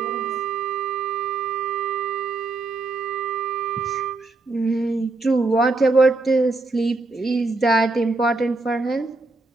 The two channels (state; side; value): quieter; left; 3.3 dB